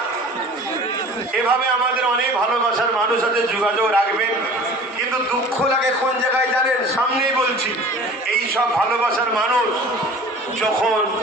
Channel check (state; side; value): normal; both; correlation 0.43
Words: এভাবে আমাদের অনেক ভালোবাসার মানুষ আছে যোগাযোগ রাখবেন, কিন্তু দুঃখ লাগে কোন জায়গায় জানেন? সামনেই বলছি, এই সব ভালোবাসার মানুষ যখন